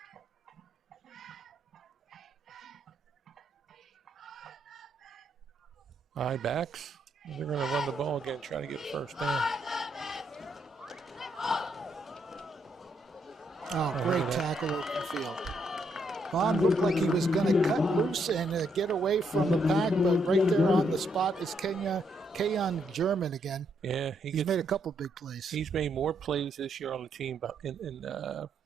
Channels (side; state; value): both; normal; correlation 0.76